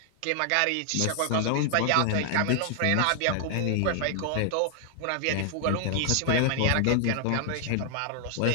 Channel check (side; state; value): both; different; correlation 0.00